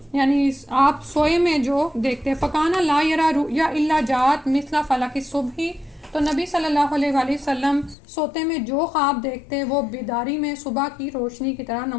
یعنی آپ سوئے میں جو دیکھتے. فکانہ لا یرا رؤیا الا جات مثل فلک الصبح. تو نبی صلی اللہ علیہ وآلہ وسلم سوتے میں جو خواب دیکھتے وہ بیداری میں صبح کی روشنی کی طرح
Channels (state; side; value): drops out; right; at 8.0 s